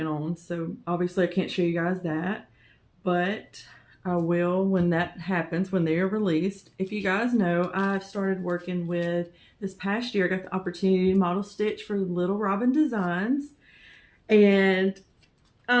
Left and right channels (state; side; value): identical; both; correlation 1.00